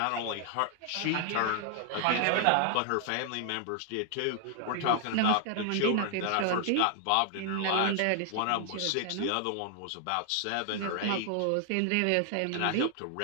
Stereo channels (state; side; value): different; both; correlation 0.00